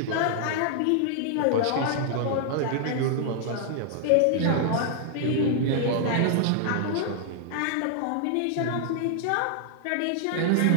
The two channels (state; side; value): different; both; correlation -0.01